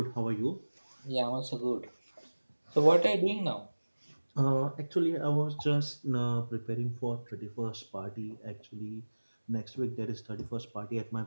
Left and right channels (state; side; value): inverted; both; correlation -1.00